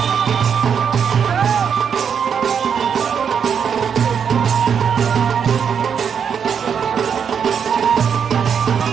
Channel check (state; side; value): quieter; left; 7.3 dB